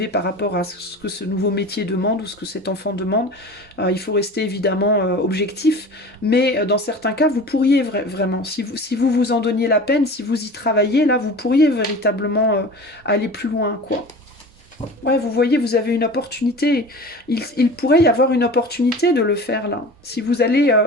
par rapport à ce que ce nouveau métier demande ou ce que cet enfant demande. Il faut rester évidemment objectif, mais dans certains cas, vous pourriez vraiment, si vous vous en donniez la peine, si vous y travaillez, là, vous pourriez véritablement aller plus loin, quoi. Ouais, vous voyez, vous avez une opportunité. Il pourrait y avoir une opportunité de le faire, là. Si vous allez...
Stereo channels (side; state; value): both; normal; correlation 0.37